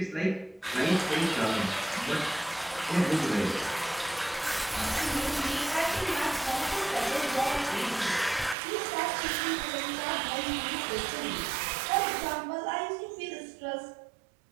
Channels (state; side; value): drops out; left; at 8.6 s